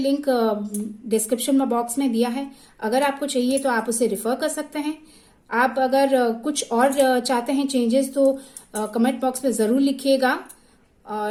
डिस्क्रिप्शन में बॉक्स में दिया है। अगर आपको चाहिए तो आप उसे रिफर कर सकते हैं। आप अगर कुछ और चाहते हैं चेंजेस तो कमेंट बॉक्स में ज़रूर लिखिएगा।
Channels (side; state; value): both; identical; correlation 1.00